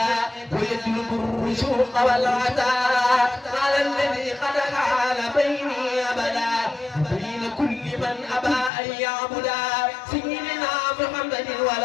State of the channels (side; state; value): right; drops out; at 8.7 s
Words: ويجلب الرشوق والعطاء على الذي قد حال بيني أبدا بين كل من أبى أن يعبدا سيدنا محمد